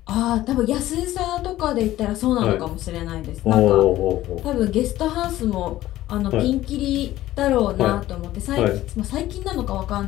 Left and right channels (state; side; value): quieter; right; 14.9 dB